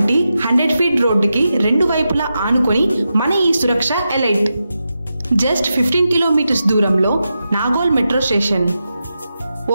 100 ఫీట్ రోడ్డుకి రెండు వైపులా ఆనుకొని మన ఈ సురక్ష ఎలైట్. జస్ట్ 15 కిలోమీటర్స్ దూరంలో Nagole metro station,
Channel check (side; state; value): both; inverted; correlation -0.89